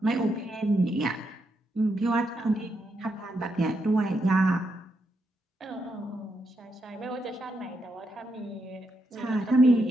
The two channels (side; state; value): both; normal; correlation 0.81